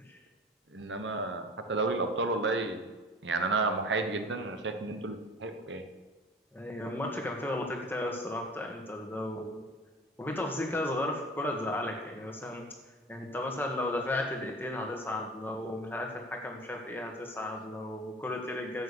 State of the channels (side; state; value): both; normal; correlation 0.40